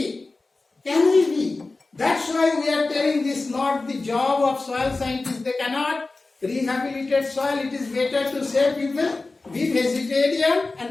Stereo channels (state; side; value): quieter; right; 3.4 dB